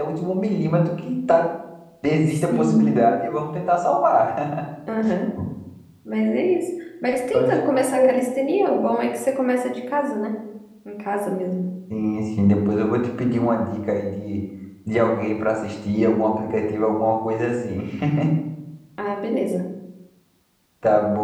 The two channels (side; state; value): both; identical; correlation 1.00